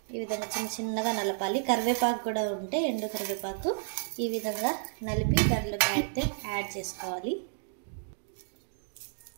ఈ విధంగా చిన్న చిన్నగా నలపాలి. కరివేపాకు కూడా ఉంటే ఎండు కరివేపాకు ఈ విధంగా నలిపి దాంట్లోకి అయితే యాడ్ చేసుకోవాలి.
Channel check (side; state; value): left; silent; digital silence